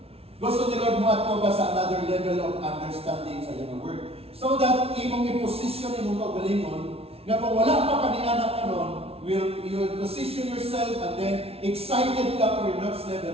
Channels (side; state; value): left; late; 0.29 ms